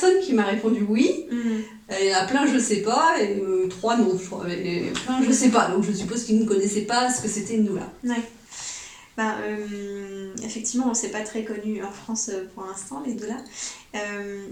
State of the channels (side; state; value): both; identical; correlation 1.00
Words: qui m'a répondu oui. Il y en a plein, je sais pas, et 3 non, je crois. Et plein, je sais pas. Donc, je suppose qu'ils ne connaissaient pas ce que c'était une doula. Ouais. Effectivement, c'est pas très connu en France pour l'instant, les doulas.